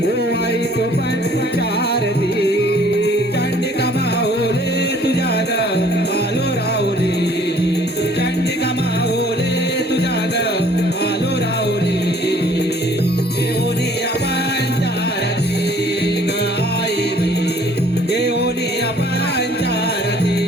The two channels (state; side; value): normal; both; correlation 0.57